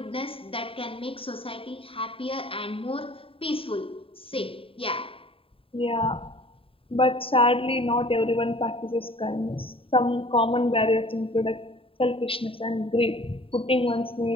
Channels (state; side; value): late; right; 0.27 ms